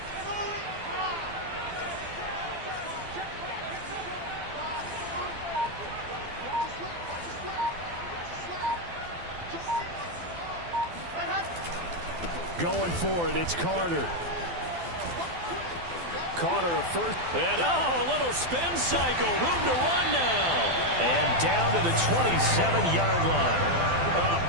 Going for it, it's Carter. Carter a first. And a little spin cycle. Room to run now. And down to the 27-yard line. A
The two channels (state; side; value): late; left; 12 ms